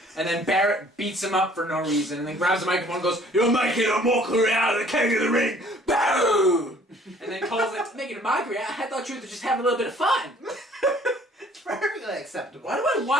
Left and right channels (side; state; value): both; normal; correlation 0.56